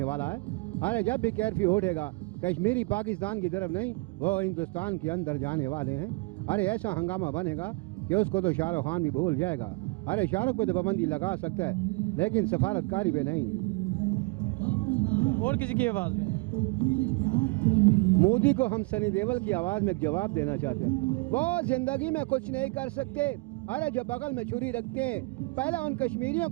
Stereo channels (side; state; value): left; quieter; 27.7 dB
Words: والا ہے؟ ارے جب بھی کیرفیو اٹھے گا کشمیری پاکستان کی طرف نہیں، وہ ہندوستان کے اندر جانے والے ہیں۔ ارے ایسا ہنگامہ بنے گا کہ اس کو تو شاہ رخ خان بھی بھول جائے گا۔ ارے شاہ رخ پہ تو پابندی لگا سکتا ہے لیکن سفارتکاری پہ نہیں۔ اور کسی کی آواز میں مودی کو ہم سنی دیول کی آواز میں ایک جواب دینا چاہتے ہیں، وہ زندگی میں کچھ نہیں کر سکتے۔ ارے جو بغل میں چھری رکھتے ہیں، پہلے ان کشمیریوں